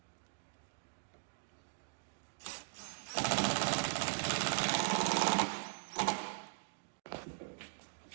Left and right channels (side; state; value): left; silent; digital silence